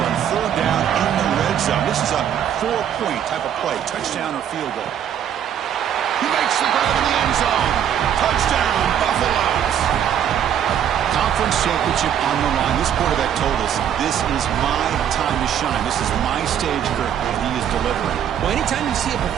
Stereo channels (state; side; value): quieter; left; 9.4 dB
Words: on third down in the red zone. This is a 4-point type of play. Touchdown or field goal. He makes the grab in the end zone. Touchdown, Buffaloes. Conference championship on the line. This quarterback told us, this is my time to shine. This is my stage, Kirk, and he is delivering. Well, anytime you see a